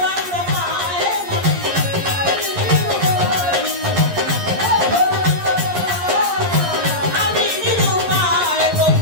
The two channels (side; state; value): left; late; 11 ms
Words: রঙ্গমায় আমি নিরুপায়